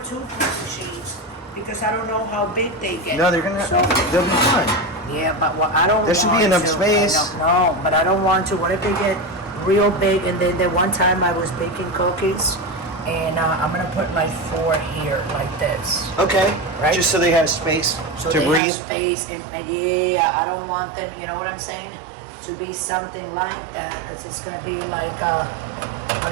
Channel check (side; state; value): left; drops out; at 18.6 s